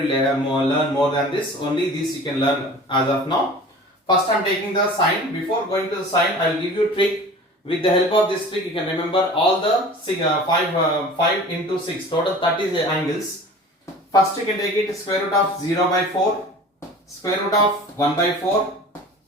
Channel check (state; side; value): normal; both; correlation 0.41